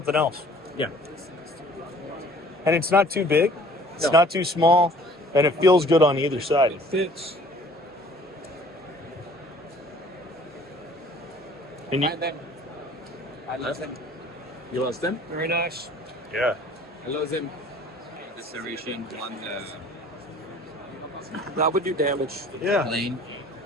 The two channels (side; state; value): both; normal; correlation 0.52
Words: else. Yeah. And it's not too big. It's No. not too small, and it feels good on either side. It fits. And I lost them. You lost them? Very nice. Yeah. I lost them. The serration one. That would do damage. Yeah. Lane.